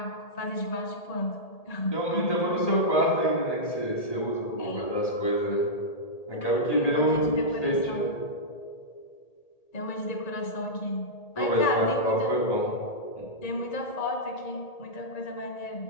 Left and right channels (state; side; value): late; right; 1.8 ms